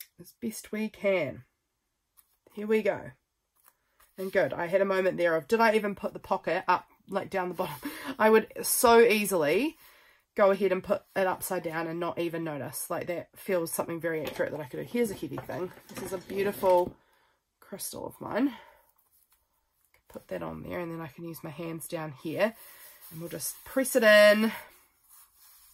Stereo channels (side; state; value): both; identical; correlation 1.00